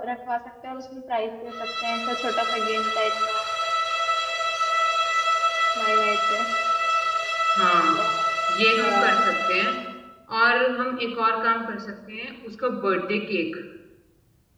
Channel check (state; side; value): identical; both; correlation 1.00